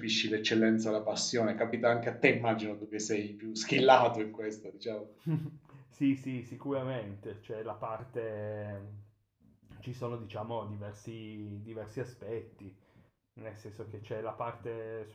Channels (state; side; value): identical; both; correlation 1.00